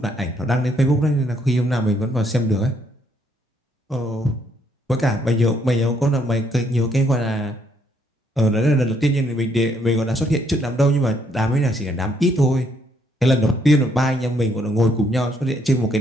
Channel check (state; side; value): normal; both; correlation 0.70